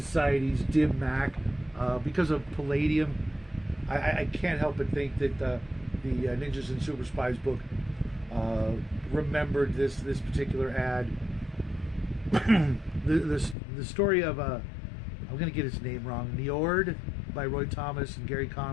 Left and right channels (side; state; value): right; drops out; at 13.6 s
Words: dim mak because of palladium. I can't help but think that the Ninjas and Super Spies book remembered this particular ad. the story of I'm going to get his name wrong. Njord by Roy Thomas and Gary